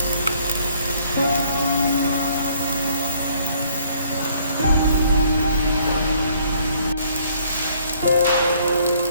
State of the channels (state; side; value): inverted; both; correlation -0.63